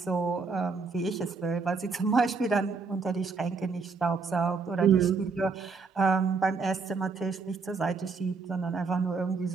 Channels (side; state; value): left; quieter; 4.7 dB